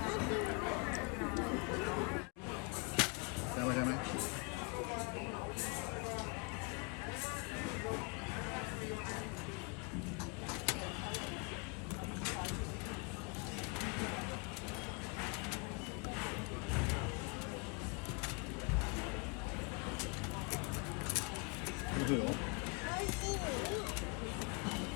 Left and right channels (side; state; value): right; quieter; 30.9 dB